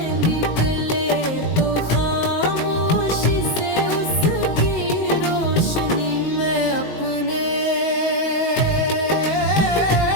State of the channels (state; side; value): late; right; 19 ms